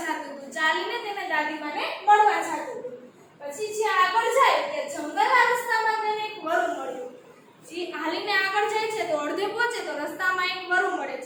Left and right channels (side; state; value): both; identical; correlation 1.00